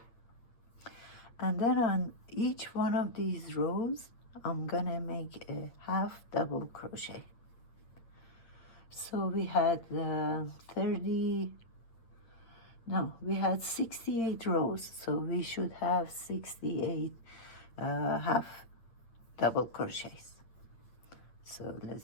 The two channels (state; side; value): late; right; 9.0 ms